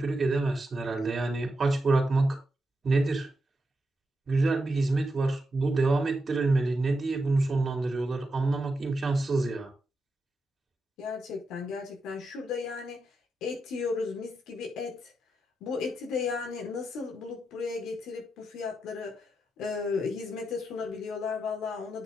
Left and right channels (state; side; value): normal; both; correlation 0.86